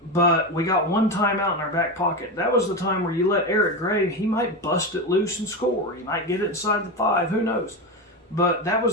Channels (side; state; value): both; normal; correlation 0.18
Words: But we got one timeout in our back pocket. That was the time where you let Eric Gray, he might bust it loose and score. He might get it inside the 5, who knows. But that